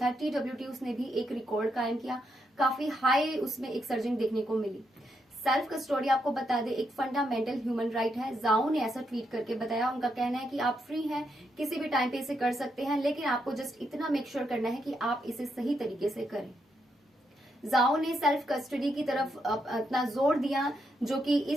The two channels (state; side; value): normal; both; correlation 0.80